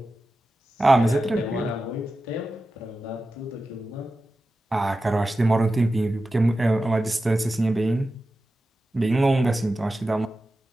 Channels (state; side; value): normal; both; correlation 0.93